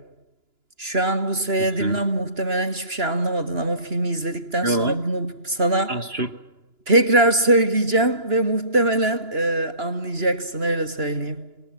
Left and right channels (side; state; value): left; late; 2.9 ms